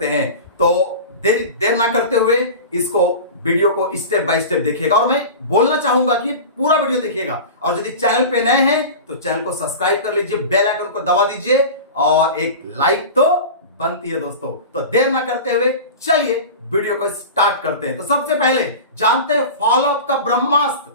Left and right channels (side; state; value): both; inverted; correlation -0.32